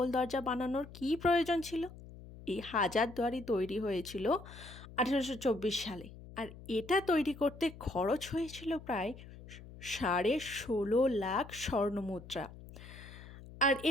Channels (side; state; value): left; noise; hum, 16 dB below the sound